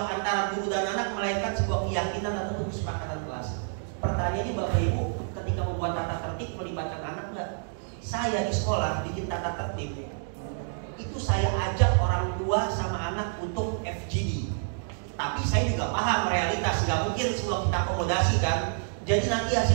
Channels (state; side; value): silent; left; digital silence